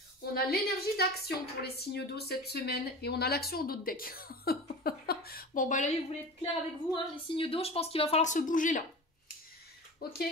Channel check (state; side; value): normal; both; correlation 0.33